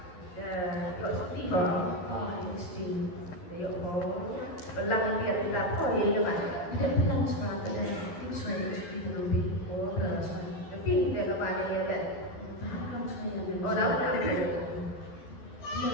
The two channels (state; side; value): late; right; 12 ms